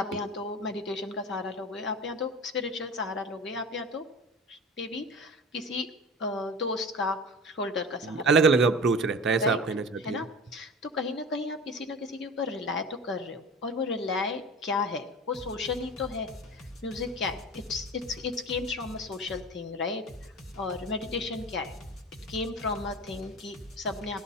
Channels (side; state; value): both; normal; correlation 0.34